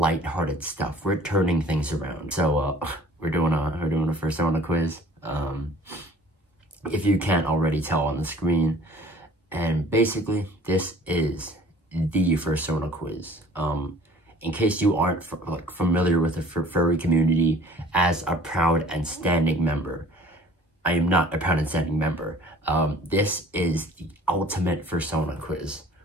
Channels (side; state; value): both; normal; correlation 0.50